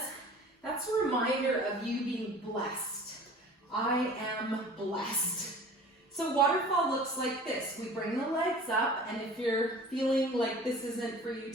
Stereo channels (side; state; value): both; normal; correlation 0.44